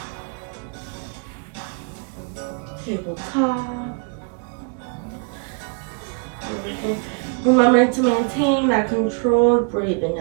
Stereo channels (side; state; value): left; quieter; 37.7 dB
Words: Tabletop. Remember to maintain that controlled breathing